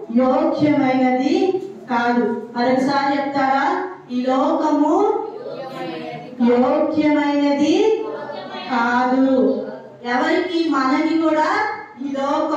యోగ్యమైనది కాదు. మరొకసారి చెప్తారా? ఈ లోకము యోగ్యమైనది కాదు. ఎవరికి? మనకి కూడా ఈ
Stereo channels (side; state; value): both; identical; correlation 1.00